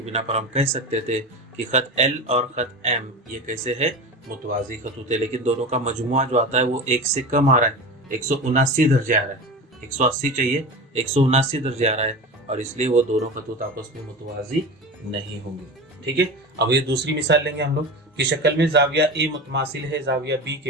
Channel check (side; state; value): both; normal; correlation 0.28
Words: बिना पर हम कह सकते थे कि खत L और खत M ये कैसे है, मुतवाज़ी खतूत है। लेकिन दोनों का मजमुआ जो आता है वो 1 से कम आ रहा है, 179 दर्जे आ रहा है, 180 चाहिए, 179 दर्जे आ रहा है, और इसलिए वो दोनों खतूत आपस में मुतवाज़ी नहीं होंगे। ठीक है, अब ये दूसरी मिसाल लेंगे हम लोग कि शक्ल में जाविया A मुतमासिल है जाविया B